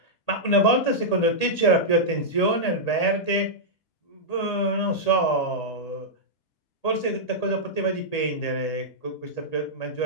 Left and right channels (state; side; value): late; right; 1.8 ms